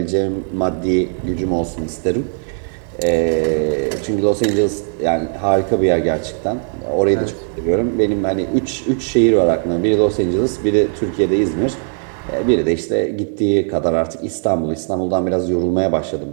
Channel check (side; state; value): left; silent; 67 dB below the other